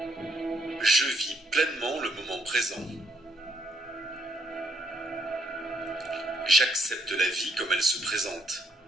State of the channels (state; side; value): normal; both; correlation 0.71